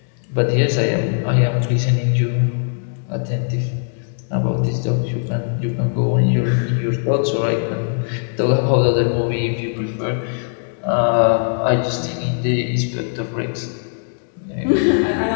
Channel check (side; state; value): right; silent; digital silence